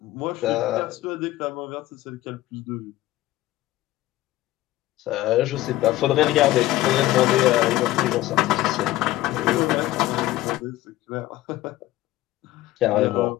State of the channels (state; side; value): quieter; right; 15.9 dB